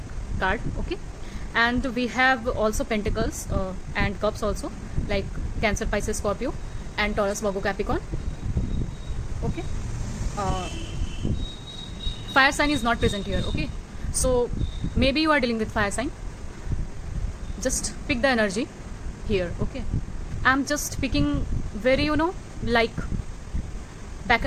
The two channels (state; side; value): identical; both; correlation 1.00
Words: card. Okay, and we have also pentacles and cups also, like Cancer, Pisces, Scorpio and Taurus, Virgo, Capricorn. Okay, fire sign is not present here. Okay, so maybe you are dealing with fire sign. Just pick the energy here. Okay, I'm just picking very like back